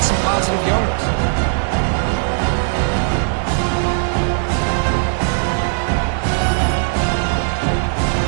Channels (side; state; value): left; silent; digital silence